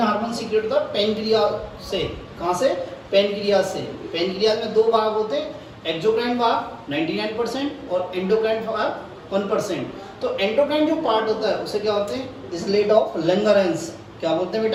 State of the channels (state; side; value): identical; both; correlation 1.00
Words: हार्मोन सीक्रेट होता है पेनक्रियास से। कहाँ से, पेनक्रियास से। पेनक्रियास में दो भाग होते हैं, एक्सोक्राइन भाग 99% और एंडोक्राइन भाग 1%। तो एंडोक्राइन जो पार्ट होता है उसे क्या होते हैं, इसलेट ऑफ लैंगरेंस। क्या बोलते हैं